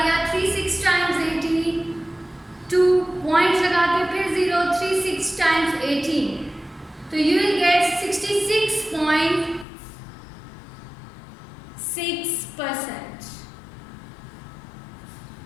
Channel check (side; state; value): right; drops out; at 9.7 s